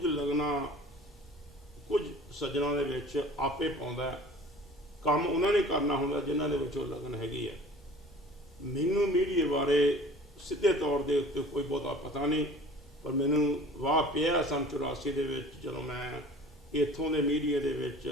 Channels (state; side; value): normal; both; correlation 0.45